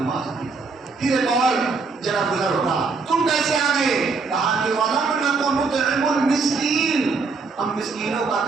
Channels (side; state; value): left; quieter; 4.4 dB